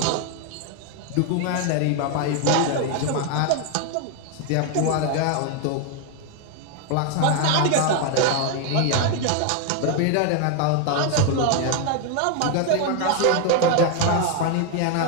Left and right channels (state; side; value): different; both; correlation 0.01